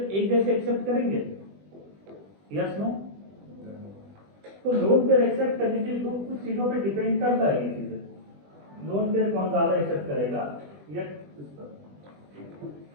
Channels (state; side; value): late; left; 20 ms